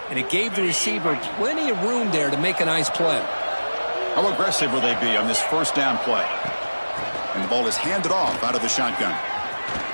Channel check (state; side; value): inverted; both; correlation -1.00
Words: and it gave the receiver plenty of room there to make a nice play. How aggressive will they be on this first down play? And the ball is handed off out of the shotgun.